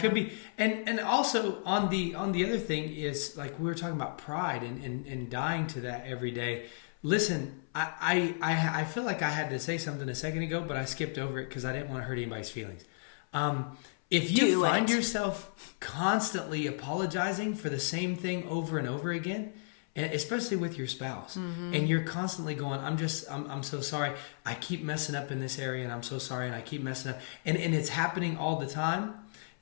be. And also on the other thing is, like, we were talking about pride and dying to that every day. Listen, I feel like I had to say something a second ago, but I skipped over it because I didn't want to hurt anybody's feelings. if you find yourself constantly apologizing for the same thing over and over again, and especially with your spouse, and you're constantly going, I'm so sorry, I keep messing up in this area, and I'm so sorry, and I keep messing up, and it's happening all the time,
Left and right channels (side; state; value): right; silent; 56 dB below the other